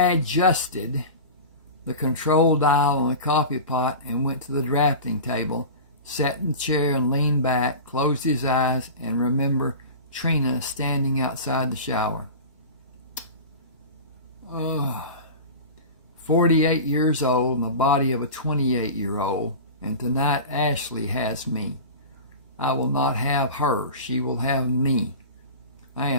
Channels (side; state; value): both; inverted; correlation -0.32